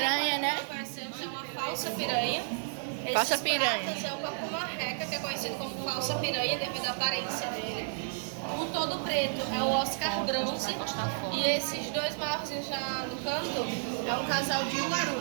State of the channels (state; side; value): silent; left; digital silence